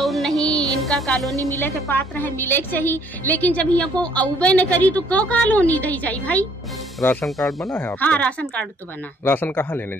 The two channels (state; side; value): normal; both; correlation 0.62